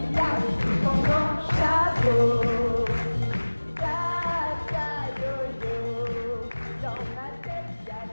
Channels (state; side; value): inverted; both; correlation -1.00